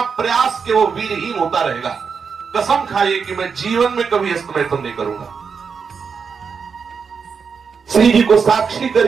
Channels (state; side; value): quieter; left; 5.9 dB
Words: प्रयास के वो वीरहीन होता रहेगा। कसम खाइए कि मैं जीवन में कभी हस्तमैथुन नहीं करूंगा। श्री जी को साक्षी